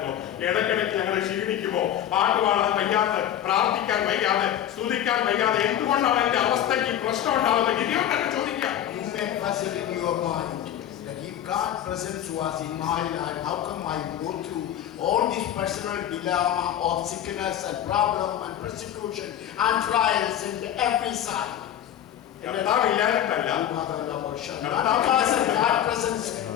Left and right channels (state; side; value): quieter; right; 10.8 dB